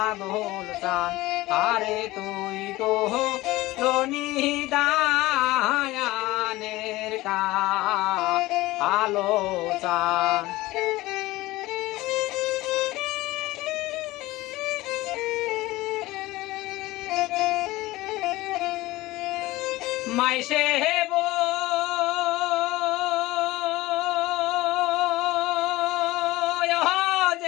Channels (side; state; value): right; quieter; 18.9 dB